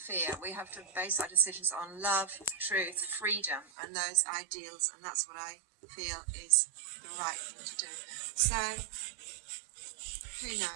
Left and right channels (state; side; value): drops out; left; at 3.7 s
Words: We have to base our decisions on love, truth, freedom, and those ideals, and that's what I feel is the right thing to do. So, who